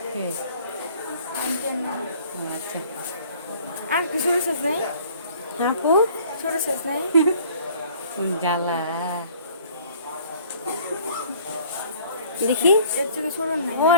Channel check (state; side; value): inverted; both; correlation -0.53